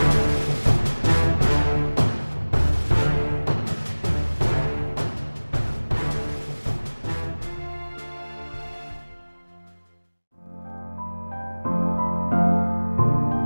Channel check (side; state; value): both; inverted; correlation -1.00